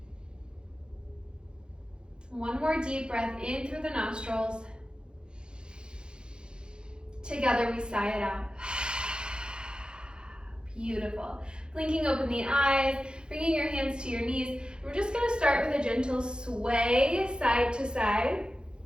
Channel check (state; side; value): late; left; 0.049 ms